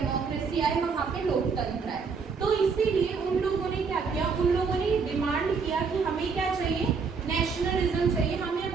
आए, वहां पे लोकतंत्र आए. तो इसीलिए उन लोगों ने क्या किया, उन लोगों ने डिमांड किया कि हमें क्या चाहिए, नेशनलिज्म चाहिए. हमें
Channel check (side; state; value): left; quieter; 5.3 dB